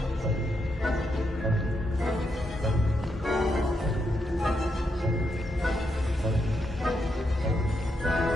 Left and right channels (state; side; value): normal; both; correlation 0.81